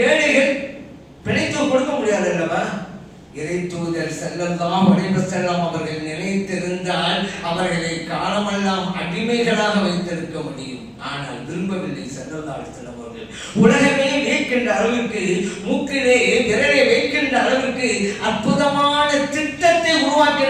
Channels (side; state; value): both; identical; correlation 1.00